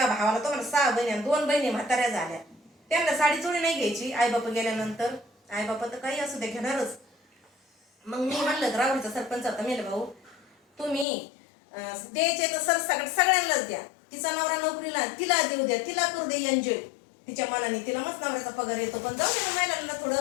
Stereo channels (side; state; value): right; drops out; at 11.1 s